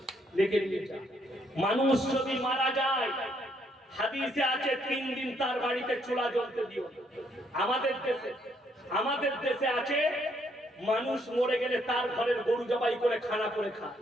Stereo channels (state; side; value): normal; both; correlation 0.71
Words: লিখে নিয়ে যা। মানুষ যদি মারা যায়, হাদিসে আছে 3 দিন তার বাড়িতে চুলা জ্বলতে দিও। আমাদের দেশে আছে মানুষ মরে গেলে তার ঘরের গরু জবাই করে খানা করে খায়।